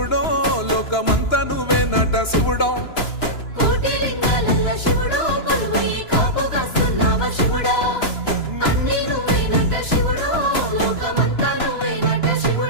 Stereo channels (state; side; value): late; right; 2.9 ms